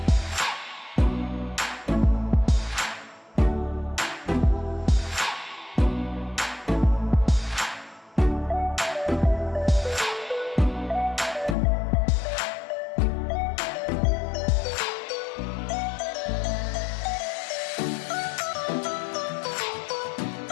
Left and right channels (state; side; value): drops out; right; at 11.6 s